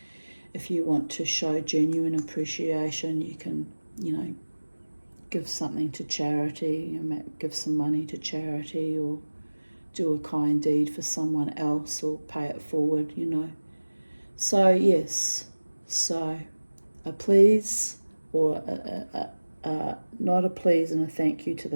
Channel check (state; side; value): inverted; both; correlation -1.00